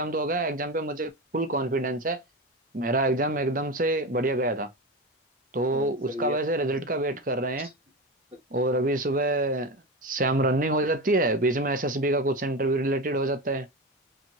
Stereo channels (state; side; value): normal; both; correlation 0.21